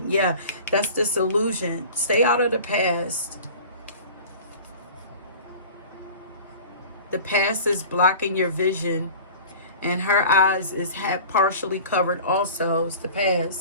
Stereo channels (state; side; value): inverted; both; correlation -0.40